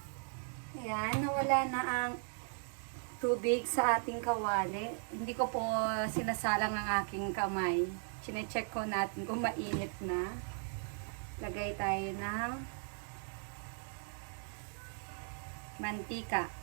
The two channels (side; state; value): left; silent; 53 dB below the other